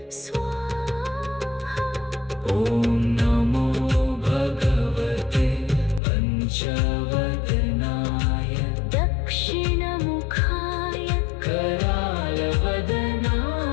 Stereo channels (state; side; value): drops out; right; at 6.0 s